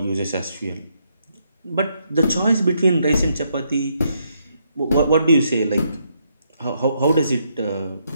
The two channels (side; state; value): both; inverted; correlation -0.76